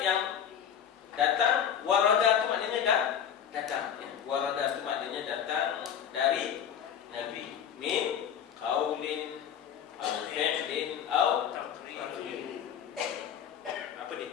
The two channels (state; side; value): quieter; right; 8.7 dB